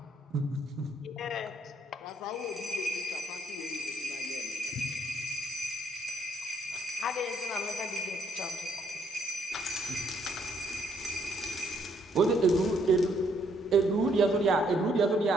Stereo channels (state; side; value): normal; both; correlation 0.69